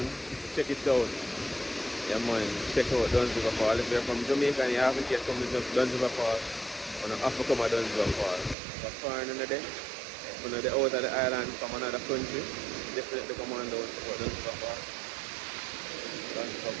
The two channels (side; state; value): left; drops out; at 8.6 s